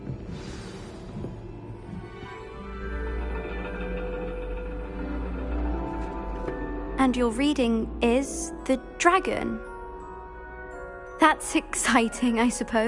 And your reading is the dragon. That's exciting, I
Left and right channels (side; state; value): both; identical; correlation 1.00